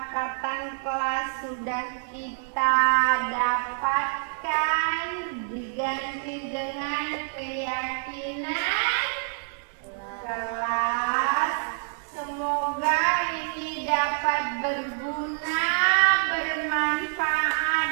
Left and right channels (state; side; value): silent; left; digital silence